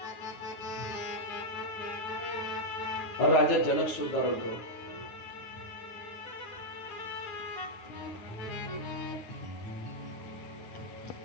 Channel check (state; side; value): late; right; 8.9 ms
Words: राजा जनक सुद्धा रडतो.